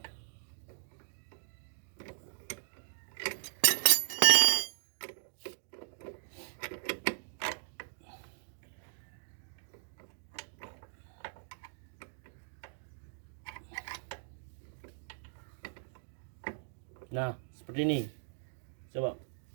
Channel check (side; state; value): left; silent; digital silence